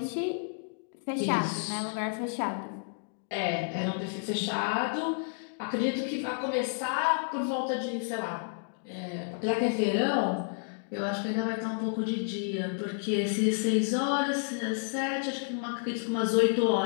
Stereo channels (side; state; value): right; silent; digital silence